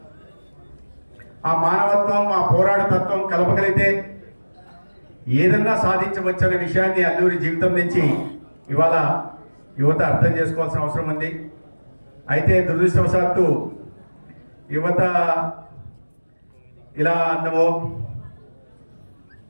ఆ మానవత్వం ఆ పోరాటతత్వం కలపగలిగితే ఏదన్నా సాధించవచ్చనే విషయాన్ని అల్లూరి జీవితం నుంచి ఇవాళ యువత అర్థం చేసుకోవాల్సిన అవసరం ఉంది. అయితే దురదృష్టవశాత్తు యువత ఇలా అన్నమో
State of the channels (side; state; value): both; inverted; correlation -1.00